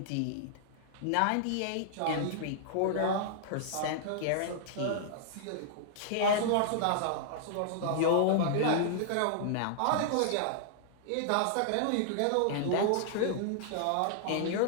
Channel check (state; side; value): different; both; correlation -0.01